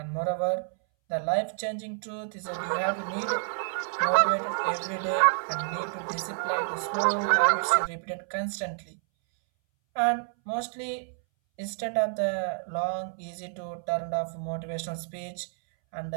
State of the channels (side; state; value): left; silent; 59 dB below the other